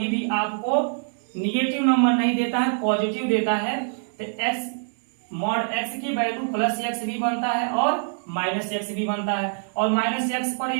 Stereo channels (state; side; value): silent; left; 62 dB below the other